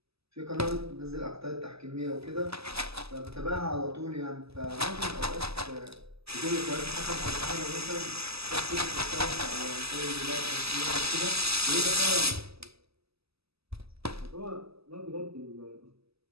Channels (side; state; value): left; late; 0.78 ms